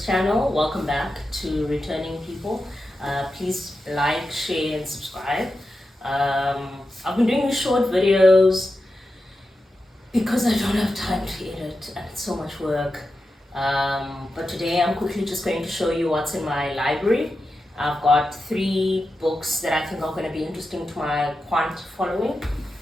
channel. Welcome back to returning people. Please like, share, and subscribe. I've been doing these short videos because I don't have time to edit and it's so much work. But today I'm quickly just going to show you what's in my library. I've got 3 books that I think are going to be interesting to my quant following.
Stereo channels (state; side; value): normal; both; correlation 0.90